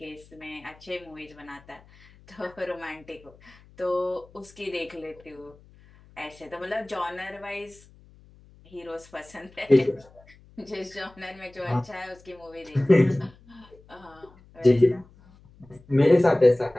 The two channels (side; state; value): left; noise; hum, 26 dB below the sound